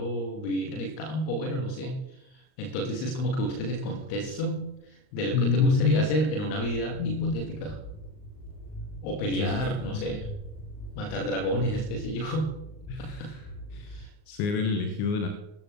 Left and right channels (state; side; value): late; right; 38 ms